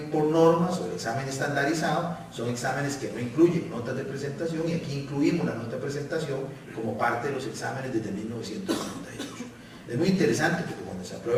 por normas o el examen estandarizado son exámenes que no incluyen notas de presentación, y aquí incluimos la nota de presentación como parte de los exámenes desde 1998. Es muy interesante porque cuando se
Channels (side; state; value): both; identical; correlation 1.00